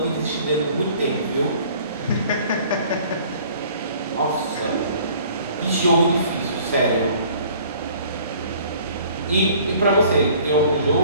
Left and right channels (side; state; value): both; inverted; correlation -0.53